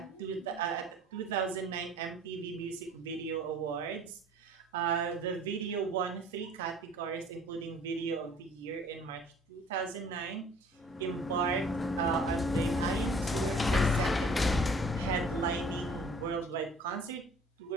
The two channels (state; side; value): normal; both; correlation 0.52